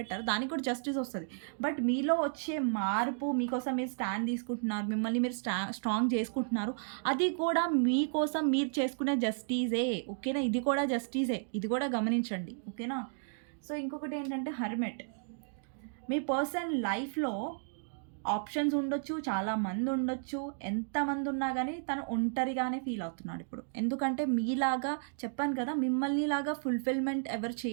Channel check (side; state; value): left; silent; digital silence